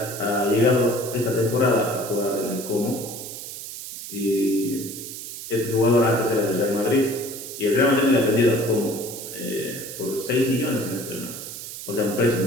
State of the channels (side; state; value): right; noise; hiss, 10 dB below the sound